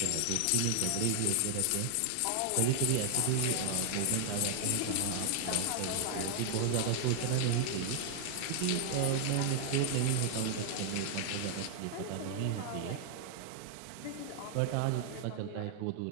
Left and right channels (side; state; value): both; different; correlation 0.00